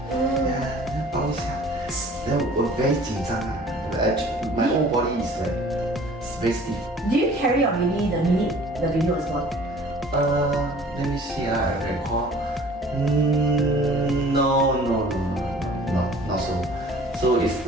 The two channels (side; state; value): both; normal; correlation 0.49